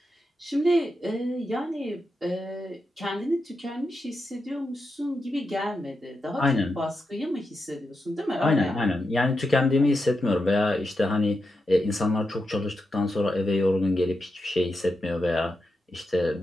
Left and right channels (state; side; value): normal; both; correlation 0.87